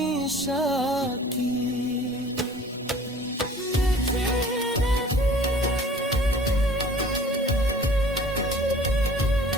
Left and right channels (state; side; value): normal; both; correlation 0.48